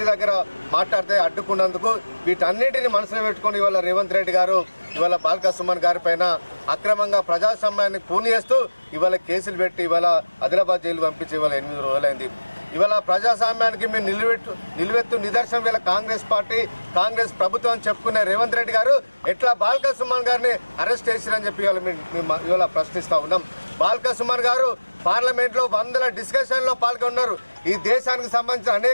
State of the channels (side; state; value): both; inverted; correlation -1.00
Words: దగ్గర మాట్లాడితే అడ్డుకున్నందుకు వీటన్నిటిని మనసులో పెట్టుకొని ఇవాళ రేవంత్ రెడ్డి గారు ఇవాళ బాల్క సుమన్ గారి పైన అక్రమంగా ప్రజాస్వామ్యాన్ని కూని చేస్తూ ఇవాళ కేసులు పెట్టి ఇవాళ ఆదిలాబాద్ జైలు పంపించి ఇవాళ 8 రోజులైంది. ఇవాళ ప్రజాస్వామ్యానికి మేము నిలువెత్తు నిదర్శనం ఇవాళ కాంగ్రెస్ ప్రభుత్వం చెప్పుకునే రేవంత్ రెడ్డి గారు ఎట్లా బాల్క సుమన్ గారిని అరెస్ట్ చేసిరని చెప్పి ఇవాళ ప్రశ్నిస్తూ ఉన్నాం. బాల్క సుమన్ గారు పార్లమెంట్లో 100 డిస్కషన్లో పాల్గొన్నారు. ఈ దేశానికి సంబంధించిన